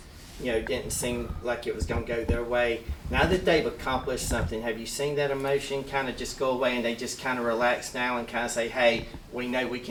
didn't seem like it was going to go their way. Now that they've accomplished something, have you seen that emotion kind of just go away and they just kind of relax now and kind of say, hey, we know we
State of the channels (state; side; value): identical; both; correlation 1.00